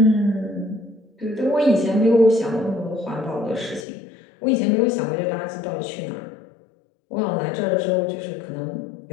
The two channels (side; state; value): right; drops out; at 3.9 s